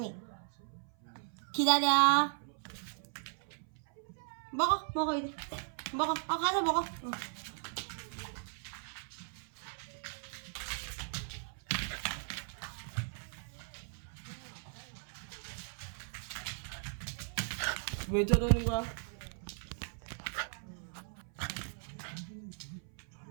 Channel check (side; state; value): left; silent; 53 dB below the other